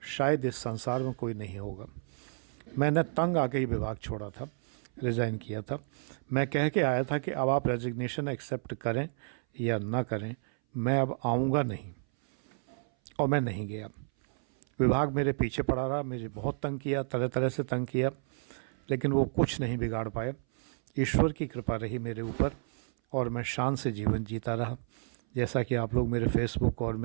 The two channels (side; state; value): left; silent; 57 dB below the other